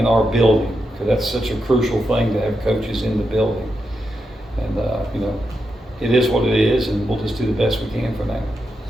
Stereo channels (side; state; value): both; normal; correlation 0.85